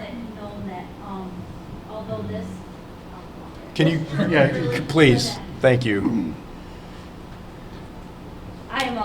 known that, although this. Can you, Yeah, please, thank you. I am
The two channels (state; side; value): identical; both; correlation 1.00